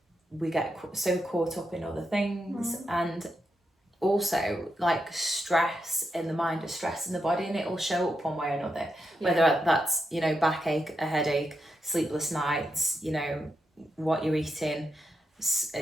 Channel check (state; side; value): normal; both; correlation 0.85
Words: we get so caught up in other things, and also like stress in the mind is stress in the body, and it will show up one way or another, whether that's, you know, backache, a headache, sleepless nights, you know, what you're eating,